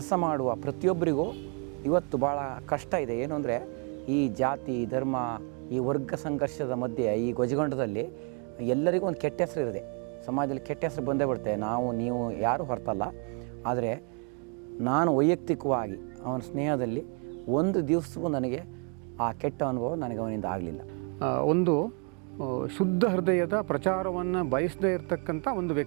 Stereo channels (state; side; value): quieter; left; 37.2 dB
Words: ಮಾಡುವ ಪ್ರತಿಯೊಬ್ಬರಿಗೂ ಇವತ್ತು ಭಾಳ ಕಷ್ಟ ಇದೆ. ಏನು ಅಂದರೆ ಈ ಜಾತಿ, ಧರ್ಮ, ಈ ವರ್ಗ ಸಂಘರ್ಷದ ಮಧ್ಯೆ, ಈ ಗೊಜಗೊಂಡದಲ್ಲಿ ಎಲ್ಲರಿಗೂ ಒಂದು ಕೆಟ್ಟ ಹೆಸರು ಇರುತ್ತೆ. ಸಮಾಜದಲ್ಲಿ ಕೆಟ್ಟ ಹೆಸರು ಬಂದೇ ಬಿಡುತ್ತೆ. ನೀವು ಯಾರೂ ಹೊರತಲ್ಲ. ಆದರೆ ನಾನು ವೈಯಕ್ತಿಕವಾಗಿ ಅವನ ಸ್ನೇಹದಲ್ಲಿ ಒಂದು ದಿವಸವೂ ನನಗೆ ಆ ಕೆಟ್ಟ ಅನುಭವ ನನಗೆ ಅವನಿಂದ ಆಗಲಿಲ್ಲ. ಒಂದು ಶುದ್ಧ ಹೃದಯದ ಪ್ರಚಾರವನ್ನು ಬಯಸದೇ ಇರತಕ್ಕಂಥ ಒಂದು